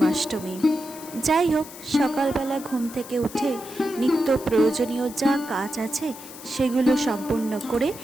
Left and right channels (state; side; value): noise; left; hiss, 16 dB below the sound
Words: যাই হোক, সকালবেলা ঘুম থেকে উঠে নিত্য প্রয়োজনীয় যা কাজ আছে সেগুলো সম্পূর্ণ করে